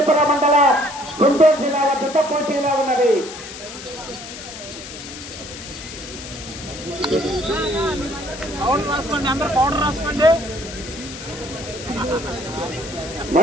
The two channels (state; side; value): noise; left; hiss, 12 dB below the sound